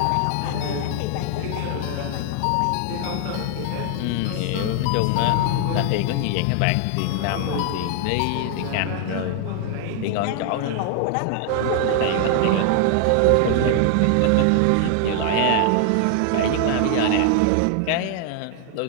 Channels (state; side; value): different; both; correlation 0.00